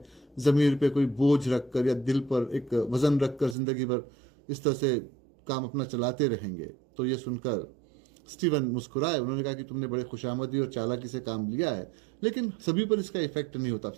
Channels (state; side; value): drops out; left; at 3.6 s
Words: ज़मीर पे कोई बोझ रखकर या दिल पर एक वज़न रखकर ज़िंदगी भर इस तरह से काम अपना चलाते रहेंगे। तो ये सुनकर स्टीवन मुस्कुराए। उन्होंने कहा कि तुमने बड़े खुशामदी और चालाकी से काम लिया है, लेकिन सभी पर इसका इफेक्ट नहीं होता।